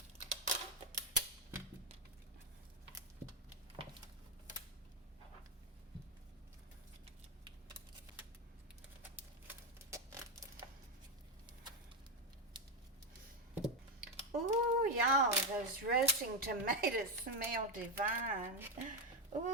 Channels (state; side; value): normal; both; correlation 0.08